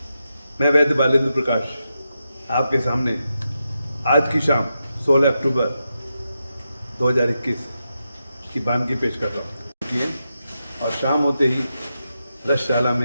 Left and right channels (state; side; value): inverted; both; correlation -0.87